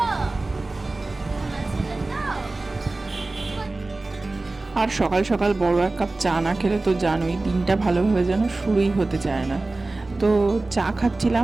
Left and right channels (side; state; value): left; quieter; 3.2 dB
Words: সোনা ছেলে তো। আর সকাল সকাল বড় এক কাপ চা না খেলে তো জানোই, দিনটা ভালোভাবে যেন শুরুই হতে চায় না। তো চা